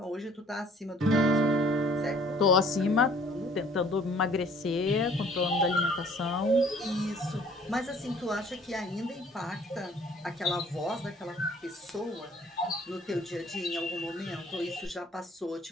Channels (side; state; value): both; normal; correlation 0.56